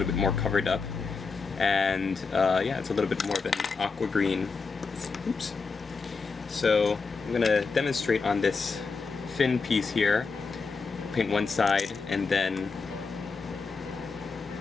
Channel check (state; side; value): quieter; right; 4.6 dB